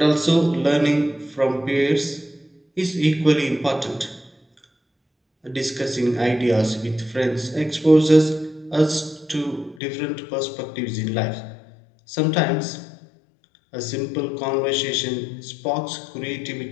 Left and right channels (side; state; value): right; drops out; at 9.8 s